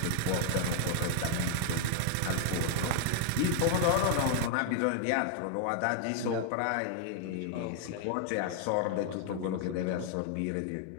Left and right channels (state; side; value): different; both; correlation 0.00